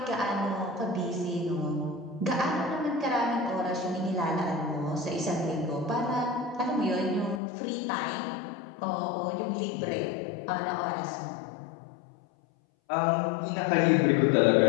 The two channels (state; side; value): drops out; right; at 7.4 s